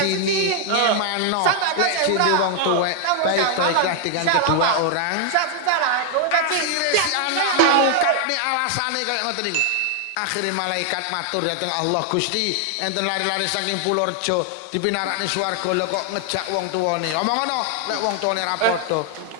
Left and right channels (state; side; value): different; both; correlation 0.00